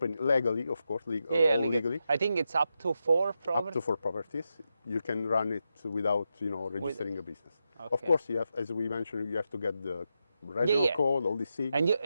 legally, of course, legally. I think it's up to 4 properties. Up to 4 properties. You can run it without, registering a business. Okay. Of course, you have, as we mentioned, you have to get the regional code, all these things.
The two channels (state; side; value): inverted; both; correlation -0.87